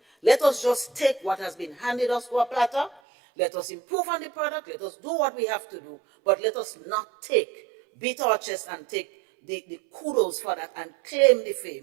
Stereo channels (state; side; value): drops out; left; at 3.0 s